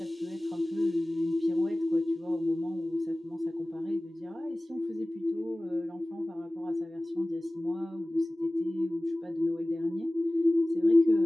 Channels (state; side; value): normal; both; correlation 0.98